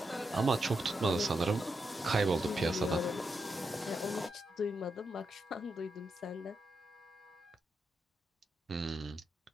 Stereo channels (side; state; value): both; normal; correlation 0.84